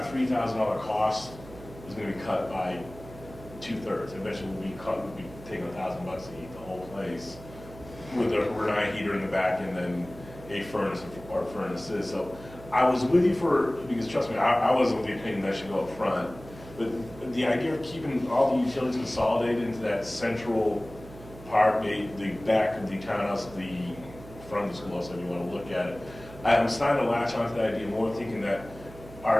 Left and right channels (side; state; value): right; noise; hum, 17 dB below the sound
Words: $3,000 cost is gonna be cut by 2/3. Eventually we'll be taking $1,000 to heat the whole place with a Renai heater in the back and then a furnace or furnaces. So I was with you because trust me, I wasn't of the opinion that should go up front. But the idea of keeping all the utilities consolidated into that central part, the back of the townhouse, the front of the schoolhouse, if you want to look at it, I'm starting to latch onto that idea more, thinking that